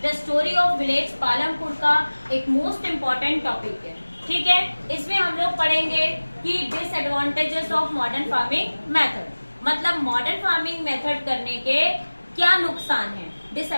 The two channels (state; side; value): inverted; both; correlation -1.00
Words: the story of village Palampur का एक मोस्ट इम्पॉर्टेंट टॉपिक है। ठीक है, इसमें हम लोग पढ़ेंगे कि disadvantages of modern farming method, मतलब मॉडर्न फार्मिंग मेथड करने के क्या नुकसान है।